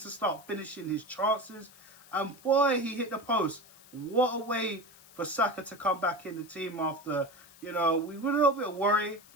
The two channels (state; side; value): noise; left; hiss, 23 dB below the sound